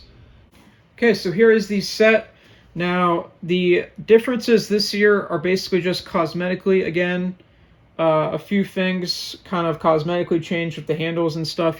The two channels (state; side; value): identical; both; correlation 1.00